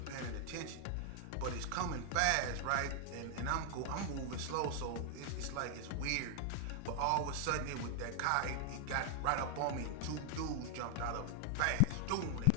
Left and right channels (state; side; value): different; both; correlation 0.00